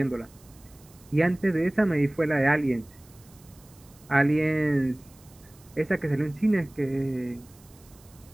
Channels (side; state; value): right; noise; hiss, 26 dB below the sound